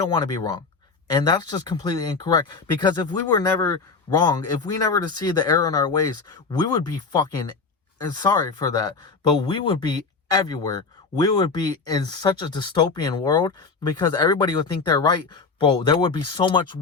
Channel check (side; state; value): right; quieter; 4.6 dB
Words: want to be wrong. And that's just completely incorrect, because if we were never wrong, if we never to see the error in our ways, we would be fucking, and sorry for that, but we would be everywhere. We would be in such a dystopian world because everybody would think they're right. Bro, there would be so much